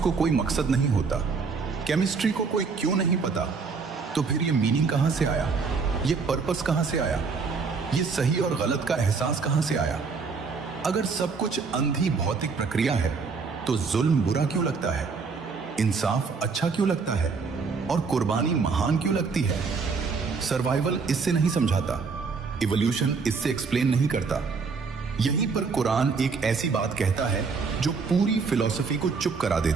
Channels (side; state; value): left; quieter; 4.9 dB